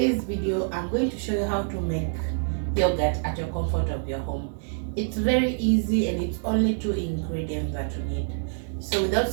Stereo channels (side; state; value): left; silent; digital silence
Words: video I'm going to show you how to make yogurt at your comfort of your home. It's very easy and it's only 2 ingredients that you need. So without